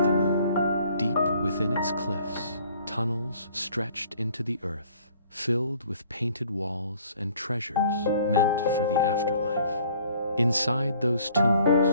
the moon. Deep within its cliffs, tunnels stretched into the earth, filled with painted walls and treasures meant for the afterlife. Inside those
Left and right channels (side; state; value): both; inverted; correlation -0.57